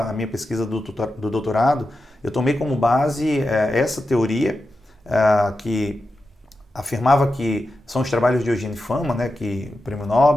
minha pesquisa do doutorado, eu tomei como base essa teoria que afirmava que são os trabalhos de Eugene Fama, né, que o Prêmio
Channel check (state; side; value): normal; both; correlation 0.90